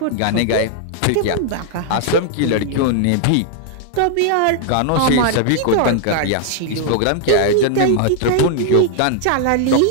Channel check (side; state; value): both; different; correlation 0.00